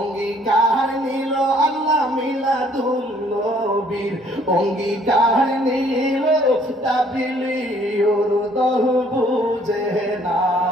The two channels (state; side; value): normal; both; correlation 0.61